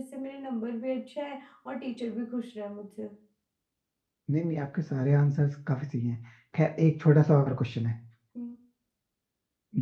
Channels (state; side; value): identical; both; correlation 1.00